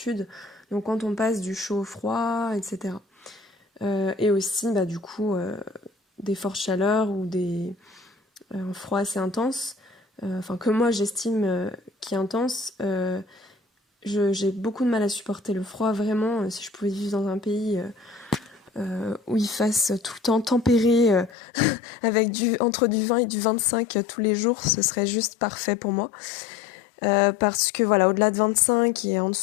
donc quand on passe du chaud au froid, etc. Et aussi, du coup, des fortes chaleurs ou un froid assez intense, que moi j'estime qui est intense. J'ai beaucoup de mal à supporter le froid, vraiment. Si je pouvais vivre dans un pays où il fasse tout le temps tempéré, avec entre du 20 et du 25 tous les jours, ce serait juste parfait pour moi. Parce que voilà, au-delà de 25 et en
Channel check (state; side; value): drops out; right; at 21.4 s